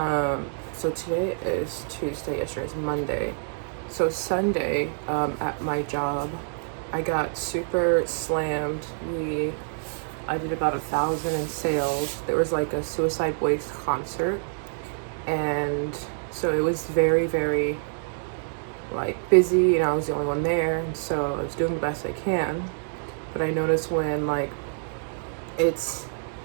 today is Tuesday, yesterday is Monday. So Sunday, at my job, I got super slammed. I did about 1,000 in sales. There was like a Suicide Waste concert, and so it was very, very like busy, and I was the only one there, and so I was doing the best I can. But I noticed it's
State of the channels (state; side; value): silent; left; 60 dB below the other